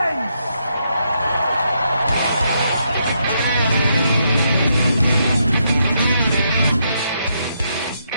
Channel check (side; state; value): both; inverted; correlation -0.78